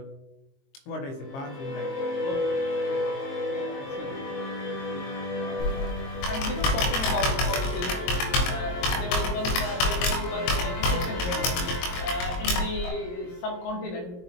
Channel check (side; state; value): right; late; 22 ms